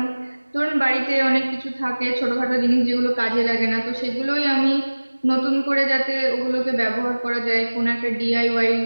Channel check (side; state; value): both; inverted; correlation -1.00